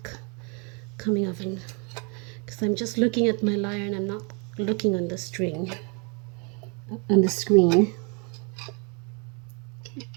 coming off, and because I'm just looking at my lyre and I'm not looking on the string, on the screen.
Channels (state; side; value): quieter; left; 33.8 dB